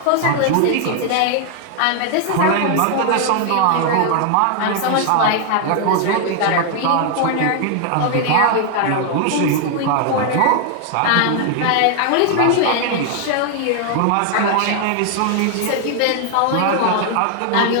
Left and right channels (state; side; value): different; both; correlation 0.00